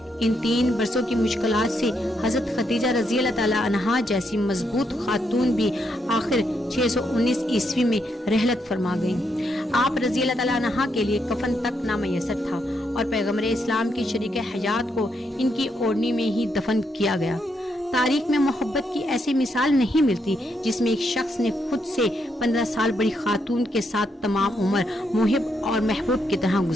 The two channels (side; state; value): both; normal; correlation 0.78